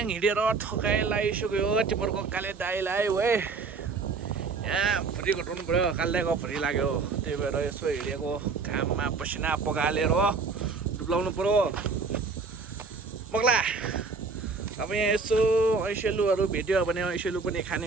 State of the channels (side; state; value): left; quieter; 4.5 dB